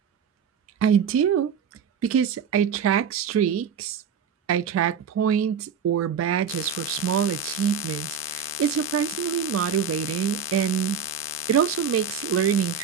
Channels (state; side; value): quieter; left; 6.7 dB